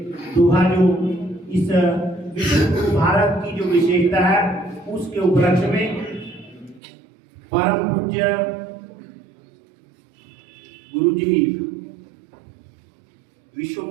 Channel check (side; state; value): left; drops out; at 6.8 s